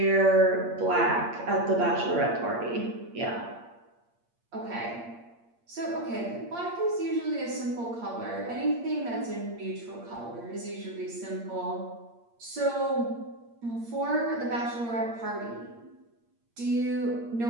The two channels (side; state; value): left; late; 8.6 ms